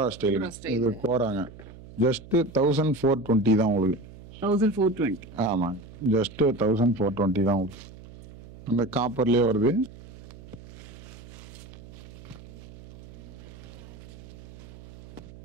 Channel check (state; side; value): noise; right; hum, 18 dB below the sound